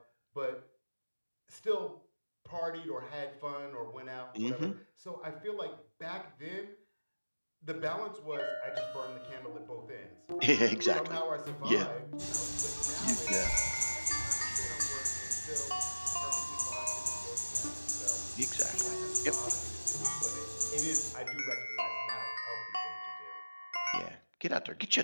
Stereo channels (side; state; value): both; inverted; correlation -1.00